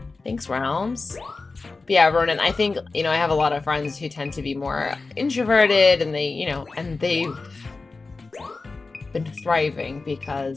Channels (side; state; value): right; quieter; 3.8 dB